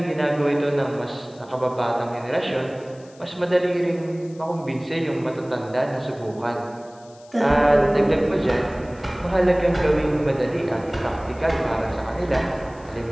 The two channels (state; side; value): noise; left; hiss, 27 dB below the sound